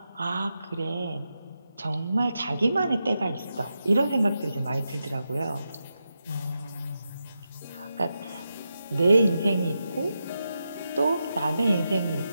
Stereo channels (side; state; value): both; inverted; correlation -0.88